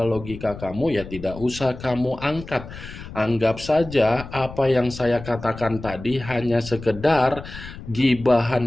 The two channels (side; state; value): left; noise; rumble, 13 dB below the sound